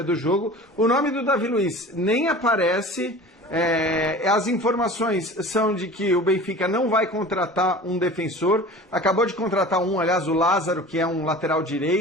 do jogo. O nome do Davi Luiz nem aparece. As informações são de que o Benfica não vai contratar um defensor. Acabou de contratar aliás, o Lázaro, que é um lateral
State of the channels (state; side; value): normal; both; correlation 0.39